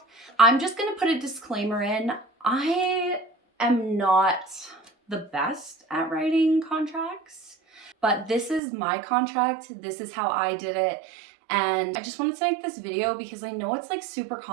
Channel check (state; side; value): drops out; left; at 8.6 s